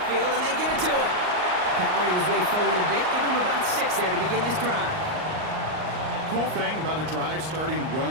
and they give it to him. Powering his way forward a bit. Give him about 6 there to begin this drive. Cool thing about a drive starting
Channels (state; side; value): late; left; 38 ms